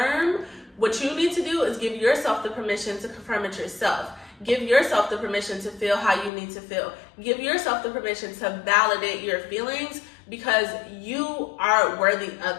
What you need to do is give yourself the permission to confirm it yourself. Give yourself the permission to feel how you need to feel. Give yourself the permission to validate your feelings because you are worthy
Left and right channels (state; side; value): drops out; right; at 6.3 s